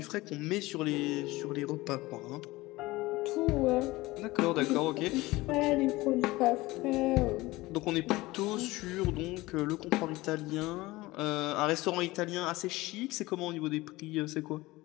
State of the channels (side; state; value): right; quieter; 19.9 dB